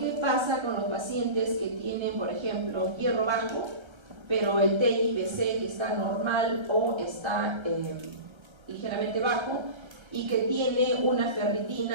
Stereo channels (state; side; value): late; left; 1.3 ms